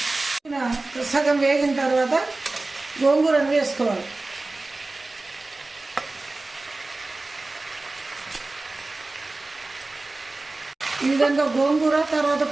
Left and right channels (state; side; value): quieter; left; 3.2 dB